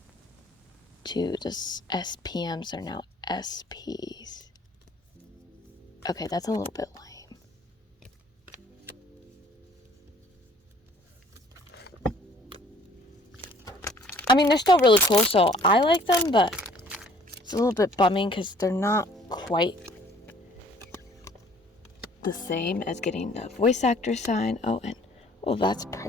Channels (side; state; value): both; normal; correlation 0.56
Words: to the SPMs are now SPs. Okay, that's a little bit lame. I mean, they're still really cool, so I like them, but it's a little bit bumming because they're not quite the same as getting the voice actor sign. Oh, and that's